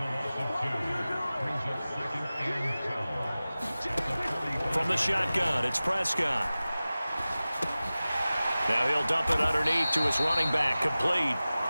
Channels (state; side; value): inverted; both; correlation -0.97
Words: From the shotgun, it's Prescott. Now he'll dump it underneath to his running back, complete.